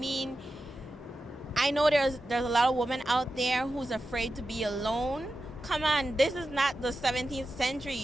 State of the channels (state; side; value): normal; both; correlation 0.91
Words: I know there's a lot of women out there who's afraid to be alone. Come on, this is not the 17th